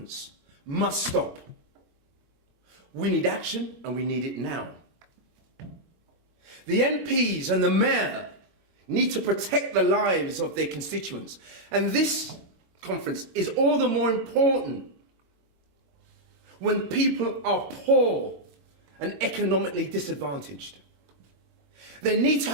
must stop. We need action, and we need it now. The MPs and the mayor need to protect the lives of their constituents, and this conference is all the more important when people are poor and economically disadvantaged. They need to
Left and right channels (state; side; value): late; left; 25 ms